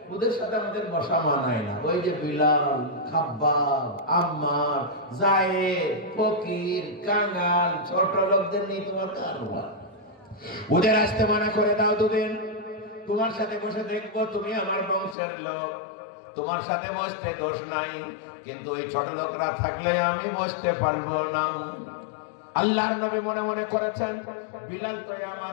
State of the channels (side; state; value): right; drops out; at 15.2 s